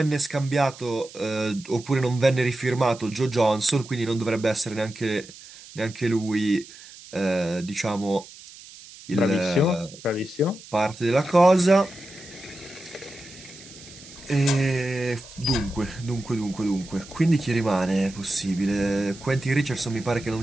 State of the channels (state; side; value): noise; right; hiss, 18 dB below the sound